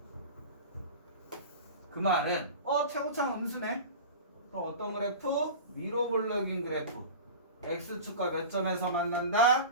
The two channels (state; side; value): inverted; both; correlation -0.33